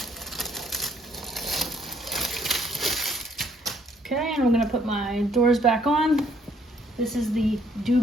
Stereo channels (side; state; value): both; normal; correlation 0.65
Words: Okay, and I'm gonna put my doors back on. This is the